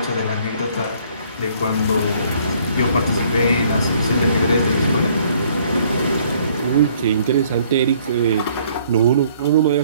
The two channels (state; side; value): inverted; both; correlation -0.62